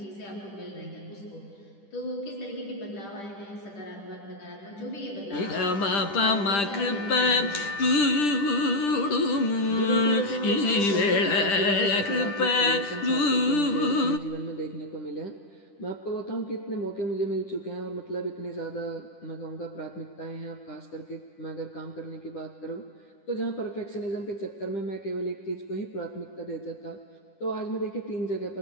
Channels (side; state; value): right; late; 10 ms